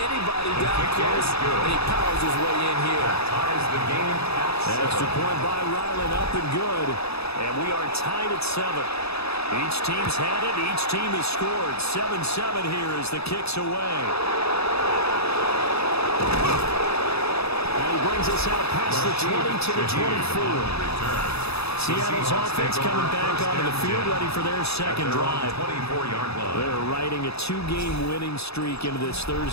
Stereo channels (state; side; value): late; right; 0.78 ms